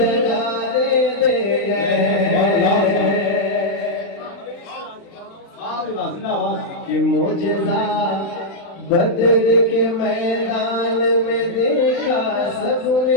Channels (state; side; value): late; right; 35 ms